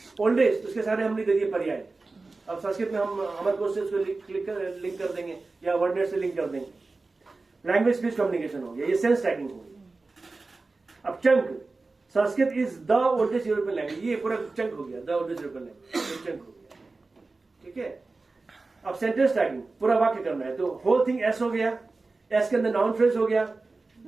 ओल्ड एज उसके सारे हमने दे दिए पर्याय। अब संस्कृत में हम अमर कोश से उसको लिंक कर देंगे या वर्डनेट से लिंक कर देंगे, लैंग्वेज स्पीच कम्युनिकेशन हो गया, ये सेंस टैगिंग हो गई। अब chunk, Sanskrit is the oldest European language, ये पूरा चंक हो गया, the oldest European language chunk हो गया, ठीक है। अब सेंटेंस टैगिंग पूरा वाक्य करना है, तो होल थिंग एस हो गया, एस के अंदर नाउन फ्रेज हो गया,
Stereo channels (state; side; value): quieter; left; 3.6 dB